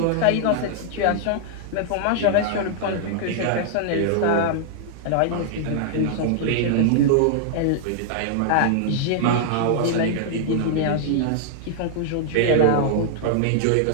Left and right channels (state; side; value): different; both; correlation -0.01